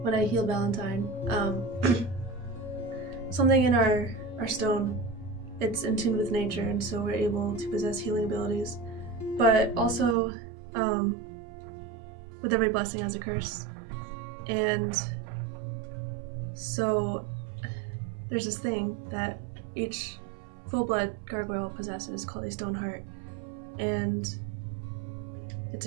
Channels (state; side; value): drops out; left; at 10.2 s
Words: when I healed Valentine. Something in our stone, it's in tune with nature, and so we're able to possess healing abilities. But also, with every blessing has a curse. And so there's this thing that each full-blood gargoyle possesses called a stone heart, and it's